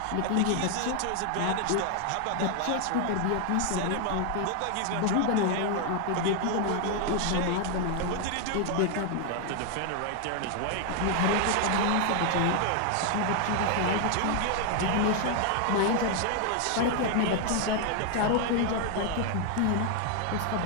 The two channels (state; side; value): different; both; correlation 0.00